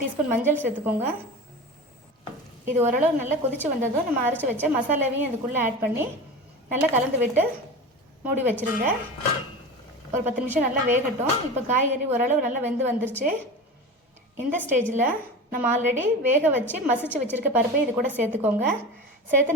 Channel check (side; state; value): both; normal; correlation 0.30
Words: டீஸ்பூன் மஞ்சள் சேர்த்துக்கோங்க. இது ஓரளவு நல்லா கொதித்து வந்ததும் நம்ம அரைச்சி வச்ச மசாலாவையும் இதுக்குள்ளே ஆட் பண்ணி நல்லா கலந்து விட்டு மூடி வச்சுருங்க. ஒரு 10 நிமிஷம் நல்லா வேகட்டும். இப்போ காய்கறி ஓரளவு நல்லா வெந்து வந்துருச்சு. இந்த ஸ்டேஜில் நம்ம ஆல்ரெடி வேக வச்சு மசிச்சு வச்சுருக்க பருப்பை இது கூட சேர்த்துக்கோங்க.